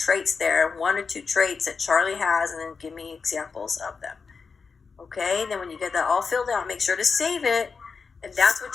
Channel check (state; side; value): quieter; right; 5.1 dB